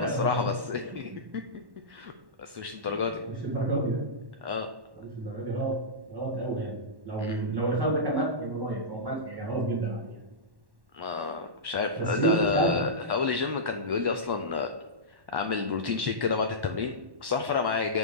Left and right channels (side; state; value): left; late; 1.1 ms